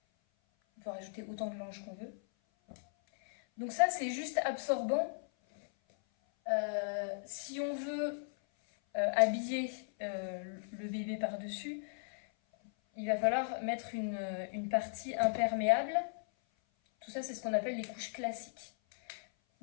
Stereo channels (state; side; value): silent; right; 53 dB below the other